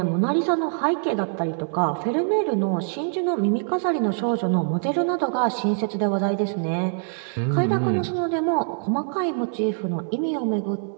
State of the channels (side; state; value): left; silent; digital silence